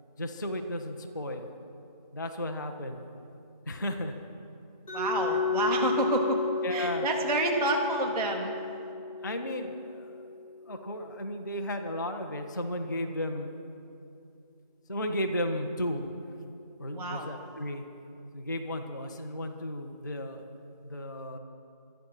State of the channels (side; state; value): both; inverted; correlation -0.32